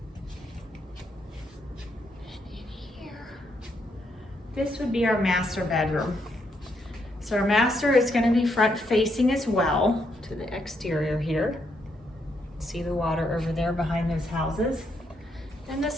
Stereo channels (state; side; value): normal; both; correlation 0.77